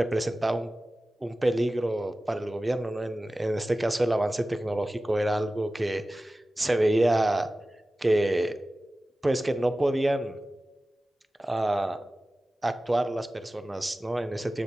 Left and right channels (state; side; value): normal; both; correlation 0.96